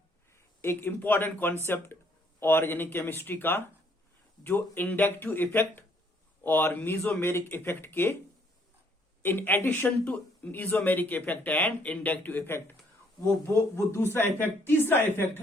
एक इम्पॉर्टेंट कॉन्सेप्ट ऑर्गेनिक केमिस्ट्री का, जो इंडक्टिव इफेक्ट और मीजोमेरिक इफेक्ट के in addition to mesomeric effect and inductive effect वो दूसरा इफेक्ट, तीसरा इफेक्ट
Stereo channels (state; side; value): normal; both; correlation 0.66